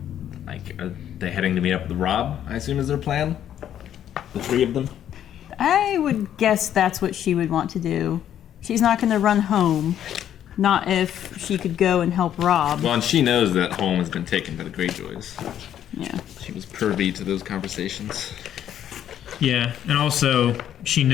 are they heading to meet up with Robb, I assume is their plan? The 3 of them? I would guess that's what she would want to do. She's not going to run home. Not if she could go and help Robb. Well, and she knows that home has been taken by the Greyjoys. Yeah. She was privy to those conversations. Yeah, and also she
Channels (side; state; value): right; quieter; 10.4 dB